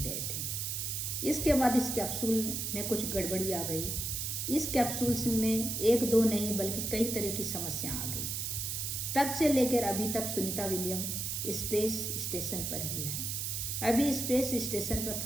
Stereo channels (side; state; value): right; noise; hiss, 2 dB below the sound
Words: गए थे। इसके बाद इस कैप्सूल में कुछ गड़बड़ी आ गई। इस कैप्सूल में एक दो नहीं बल्कि कई तरह की समस्या आ गई। तब से लेकर अभी तक सुनीता विलियम स्पेस स्टेशन पर ही है। अभी स्पेस स्टेशन पर